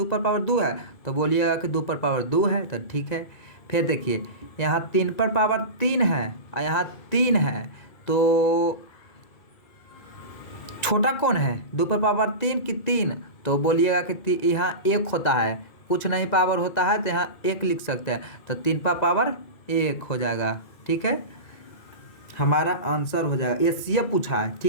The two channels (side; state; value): right; late; 1.9 ms